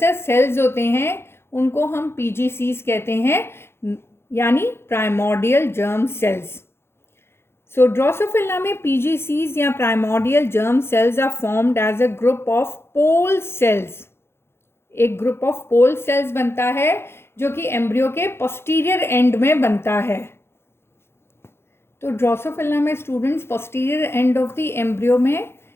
सेल्स होते हैं उनको हम PGCs कहते हैं, यानी primordial germ cells. So Drosophila में PGCs या primordial germ cells are formed as a group of pole cells. एक ग्रुप ऑफ पोल सेल्स बनता है जो कि एम्ब्रियो के पोस्टीरियर एंड में बनता है। तो ड्रोसोफिला में students posterior end of the embryo में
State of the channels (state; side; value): late; right; 0.12 ms